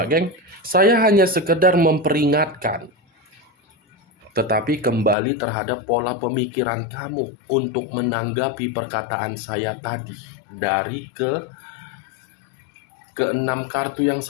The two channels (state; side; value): drops out; right; at 5.2 s